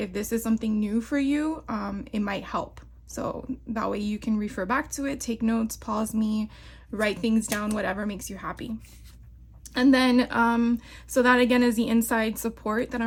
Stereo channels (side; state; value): both; identical; correlation 1.00